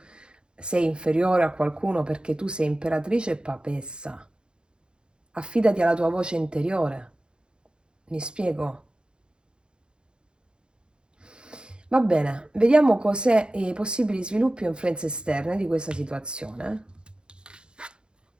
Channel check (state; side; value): late; left; 0.051 ms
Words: sei inferiore a qualcuno perché tu sei imperatrice e papessa. Affidati alla tua voce interiore. Mi spiego? Va bene, vediamo cos'è i possibili sviluppi o influenze esterne di questa situazione.